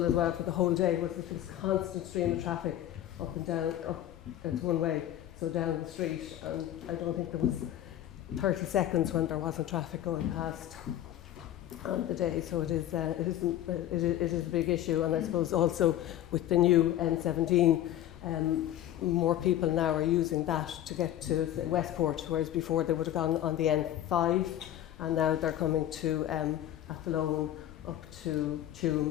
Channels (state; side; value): quieter; right; 12.3 dB